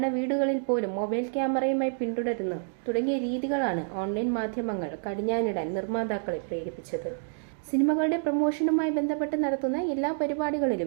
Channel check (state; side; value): silent; left; digital silence